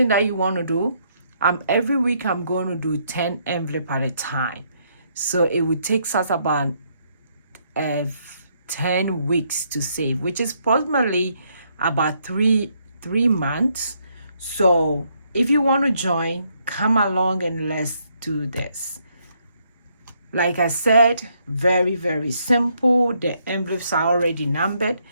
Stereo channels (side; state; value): both; inverted; correlation -0.73